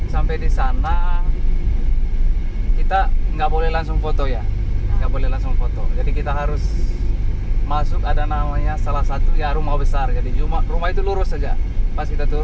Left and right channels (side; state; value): both; identical; correlation 1.00